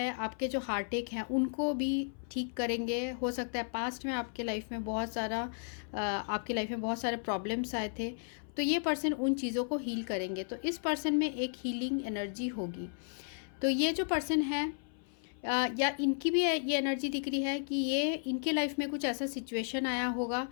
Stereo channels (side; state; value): right; silent; 55 dB below the other